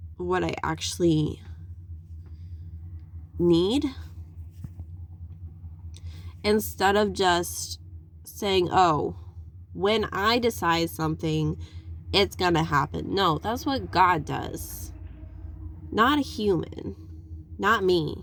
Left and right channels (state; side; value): identical; both; correlation 1.00